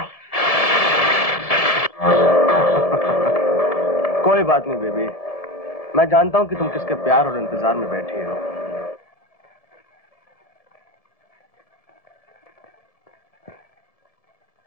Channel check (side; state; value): right; late; 1.7 ms